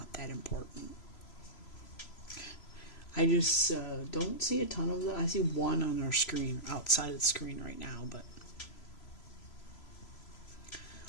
that important. I just don't see a ton of them. I see one on our screen, outside of the screen right now, but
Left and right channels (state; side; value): late; right; 3.0 ms